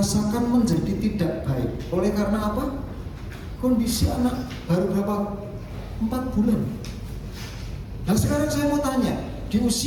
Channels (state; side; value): identical; both; correlation 1.00